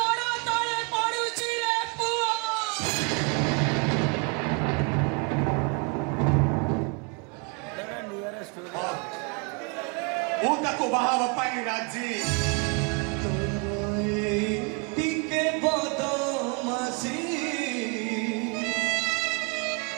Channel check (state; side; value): quieter; left; 32.2 dB